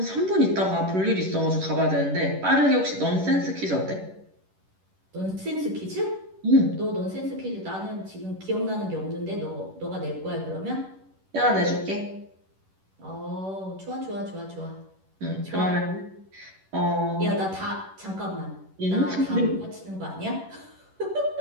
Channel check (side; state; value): left; late; 11 ms